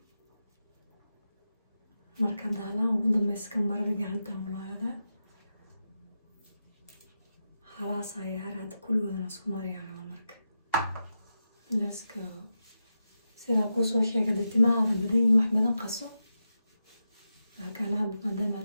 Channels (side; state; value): both; inverted; correlation -0.89